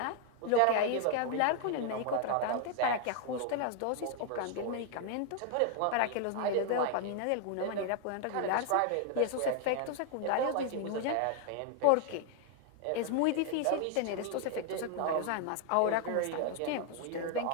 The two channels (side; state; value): both; different; correlation 0.00